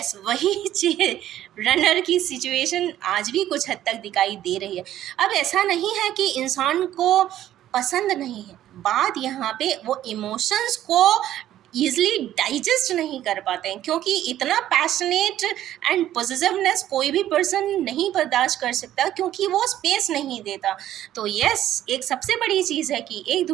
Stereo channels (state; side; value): quieter; left; 12.5 dB